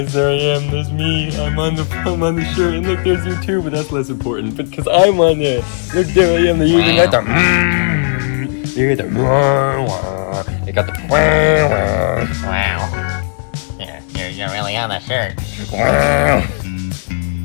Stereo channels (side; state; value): right; silent; digital silence